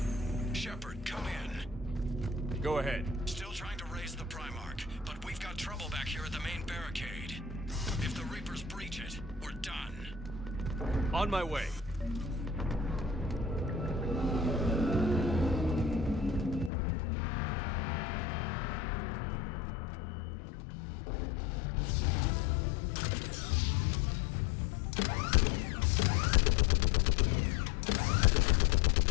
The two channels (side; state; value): right; drops out; at 16.7 s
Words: Shepard, come in. Go ahead. Still trying to raise the Primarch, but we've got trouble back here at the main barricade. If the Reapers breach it, we're done. On my way.